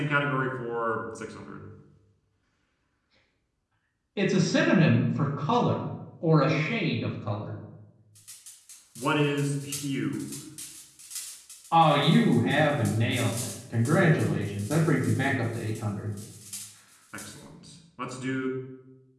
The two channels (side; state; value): both; identical; correlation 1.00